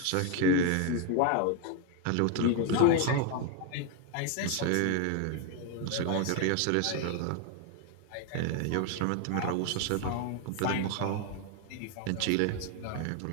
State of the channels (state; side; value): different; both; correlation 0.01